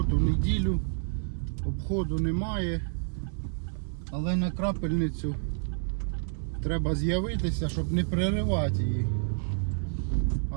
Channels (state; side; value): silent; left; digital silence